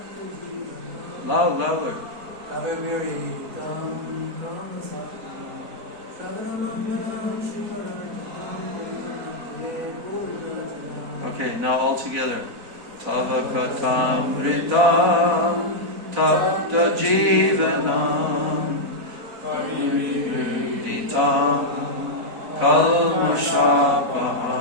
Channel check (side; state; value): left; late; 4.0 ms